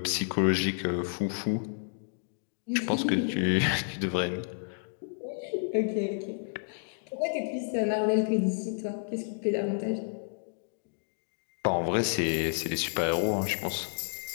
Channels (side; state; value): right; silent; digital silence